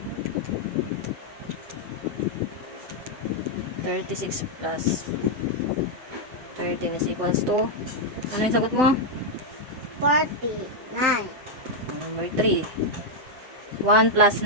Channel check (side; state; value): left; late; 7.9 ms